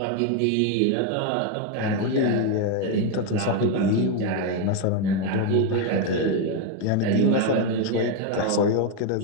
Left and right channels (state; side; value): different; both; correlation 0.02